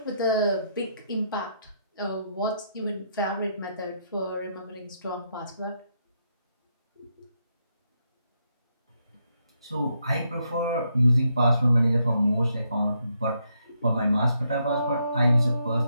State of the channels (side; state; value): both; inverted; correlation -0.78